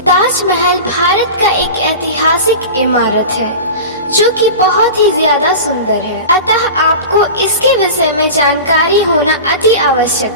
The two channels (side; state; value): both; inverted; correlation -0.31